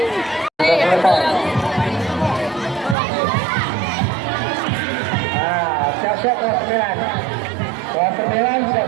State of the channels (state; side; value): drops out; left; at 3.0 s